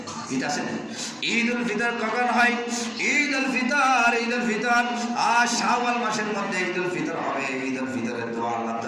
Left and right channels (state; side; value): identical; both; correlation 1.00